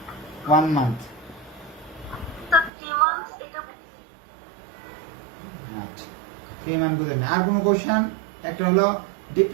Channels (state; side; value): drops out; left; at 2.7 s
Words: 1 month. আচ্ছা 3 মান্থ বুঝলেন না। আর কোনো কোশ্চেন? একটা হলো